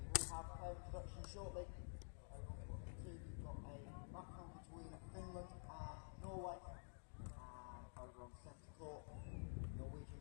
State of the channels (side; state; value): right; silent; digital silence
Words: will have player introduction shortly. Over on foot 2, we've got a battle between Finland and Norway, and over on centre court,